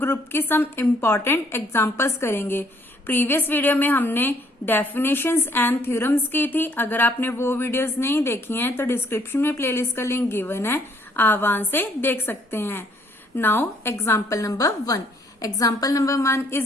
ग्रुप की सम इम्पॉर्टेंट एग्जांपल्स करेंगे। प्रीवियस वीडियो में हमने डेफिनेशंस एंड थ्योरम्स की थी। अगर आपने वो वीडियोस नहीं देखी हैं तो डिस्क्रिप्शन में प्लेलिस्ट का लिंक गिवन है, आप वहां से देख सकते हैं। Now example number 1। Example number 1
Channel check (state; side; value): normal; both; correlation 0.65